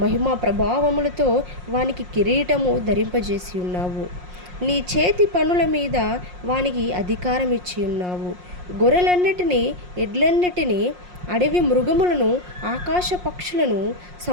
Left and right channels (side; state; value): left; late; 5.6 ms